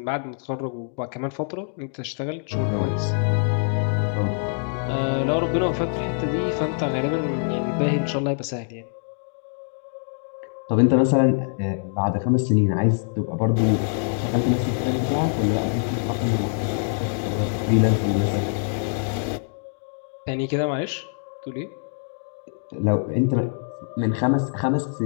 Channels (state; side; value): silent; right; digital silence